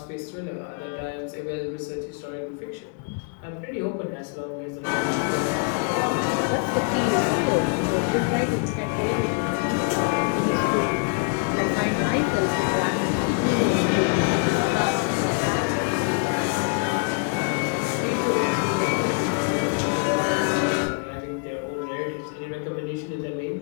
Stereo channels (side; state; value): right; quieter; 39.9 dB